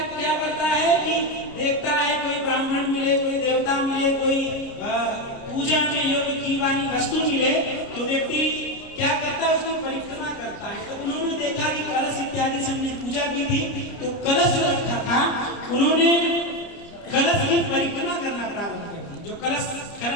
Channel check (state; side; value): late; right; 29 ms